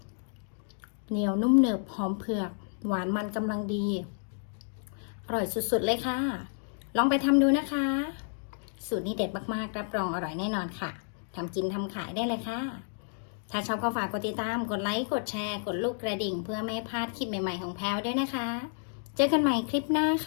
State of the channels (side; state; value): right; silent; digital silence